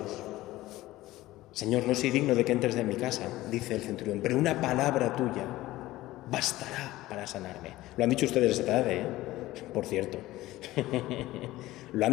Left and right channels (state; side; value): quieter; right; 17.0 dB